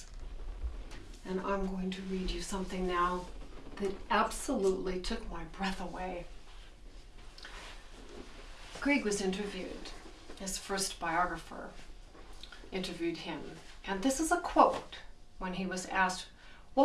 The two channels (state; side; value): identical; both; correlation 1.00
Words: And I'm going to read you something now that absolutely took my breath away. Grieg was interviewed. His first biographer interviewed him. And this is a quote when he was asked,